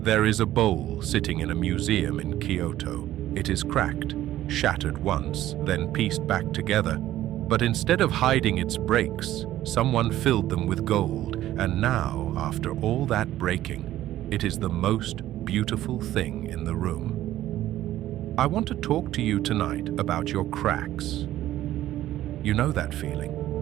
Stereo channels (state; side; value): quieter; left; 13.8 dB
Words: There is a bowl sitting in a museum in Kyoto. It is cracked, shattered once, then pieced back together. But instead of hiding its breaks, someone filled them with gold, and now, after all that breaking, it is the most beautiful thing in the room. I want to talk to you tonight about your cracks. You know that